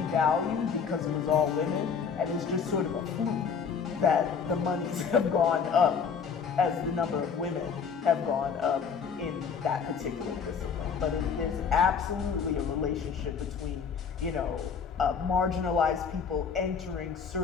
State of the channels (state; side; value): quieter; right; 6.3 dB